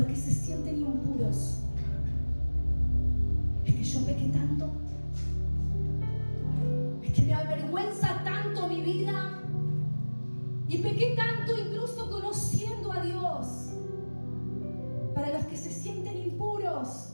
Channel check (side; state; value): both; inverted; correlation -1.00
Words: que se sienten impuros, es que yo pequé tanto, es que me avergüenza tanto mi vida y pequé tanto incluso conociendo a Dios. Para los que se sienten impuros,